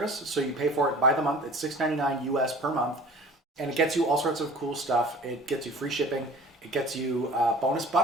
so you pay for it by the month. It's $6.99 US per month, and it gets you all sorts of cool stuff. It gets you free shipping. It gets you bonus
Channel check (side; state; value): both; normal; correlation 0.44